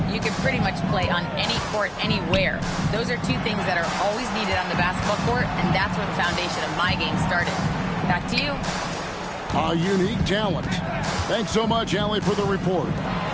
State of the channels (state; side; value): identical; both; correlation 1.00